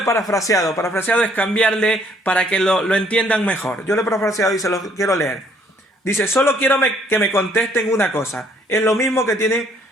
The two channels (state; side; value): normal; both; correlation 0.64